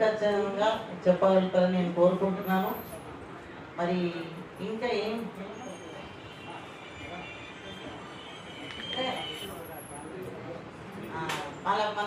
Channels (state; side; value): identical; both; correlation 1.00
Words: చెప్పగలుగుతారని నేను కోరుకుంటున్నాను. మరి ఇంకా ఏం